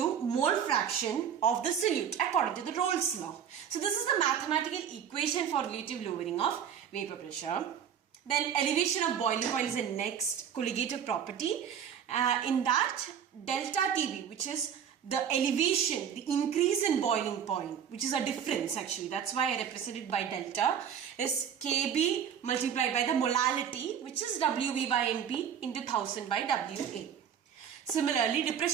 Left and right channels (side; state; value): left; quieter; 8.4 dB